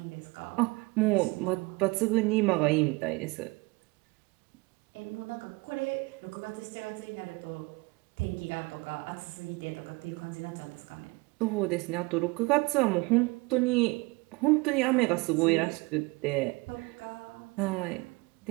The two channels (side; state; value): left; quieter; 25.4 dB